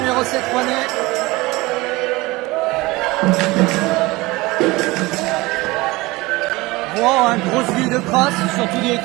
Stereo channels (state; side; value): quieter; left; 21.6 dB